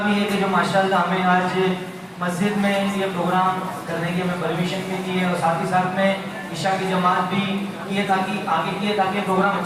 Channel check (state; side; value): identical; both; correlation 1.00